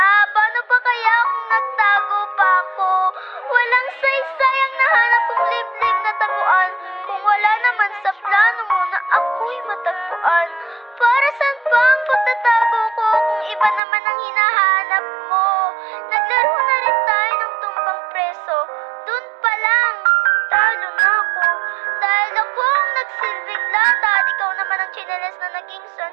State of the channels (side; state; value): left; drops out; at 13.8 s